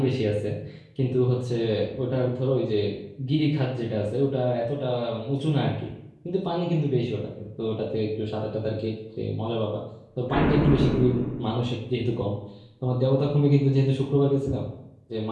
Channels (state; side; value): identical; both; correlation 1.00